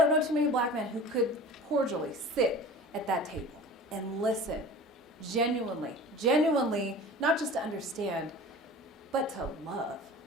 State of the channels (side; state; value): both; normal; correlation 0.39